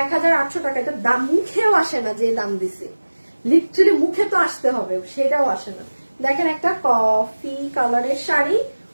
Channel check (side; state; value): both; inverted; correlation -1.00